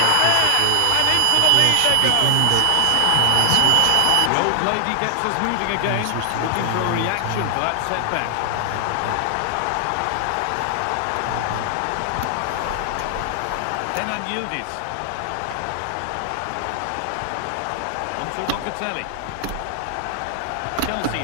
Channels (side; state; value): both; different; correlation 0.00